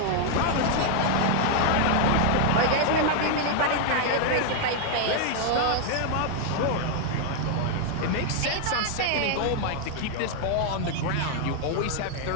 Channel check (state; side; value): different; both; correlation 0.00